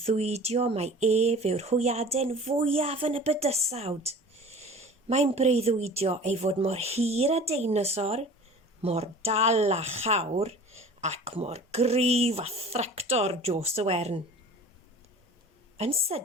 mai ef yw'r hwyaden fwyaf yn y bydysawd. Mae'n breuddwydio ei fod mor hir a deinosor, mor dal a chawr, ac mor gryf a thractor Jos y Wern. Yn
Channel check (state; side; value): normal; both; correlation 0.43